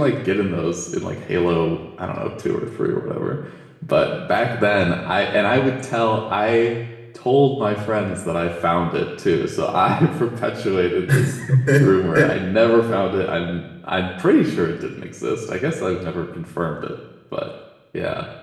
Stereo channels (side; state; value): both; identical; correlation 1.00